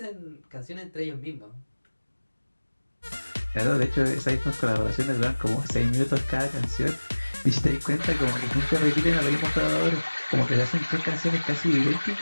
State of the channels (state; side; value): inverted; both; correlation -1.00